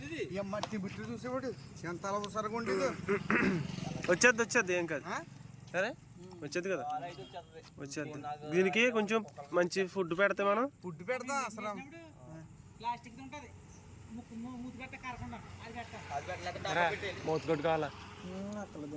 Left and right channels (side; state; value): both; identical; correlation 1.00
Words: మట్టి బిట్లు చూసేవాడు ఎంత అవసరంగా ఉండేది. వచ్చేది ఏం కాదు సరే, వచ్చేది కదా వచ్చేది. దీనికి కొంచెం మంచి ఫుడ్ పెడితే మనం ఫుడ్ పెడతాం అసలు. మూతకొట్టు కావాలా